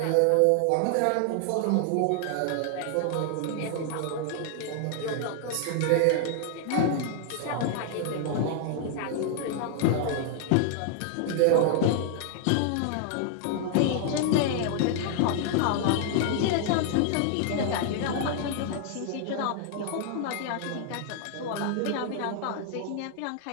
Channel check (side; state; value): both; different; correlation 0.00